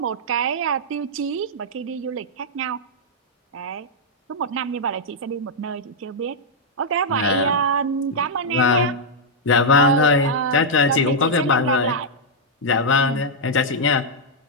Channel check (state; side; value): normal; both; correlation -0.06